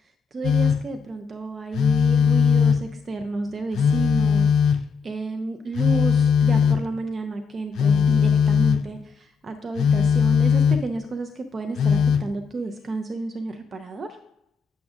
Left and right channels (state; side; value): quieter; right; 5.2 dB